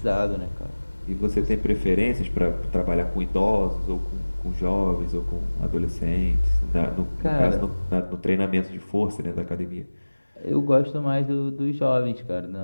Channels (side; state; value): both; inverted; correlation -1.00